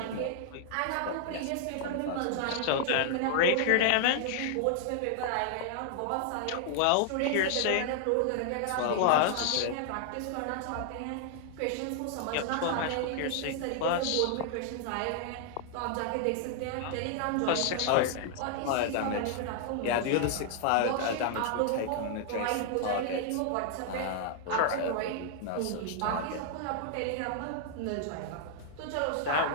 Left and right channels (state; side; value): different; both; correlation -0.01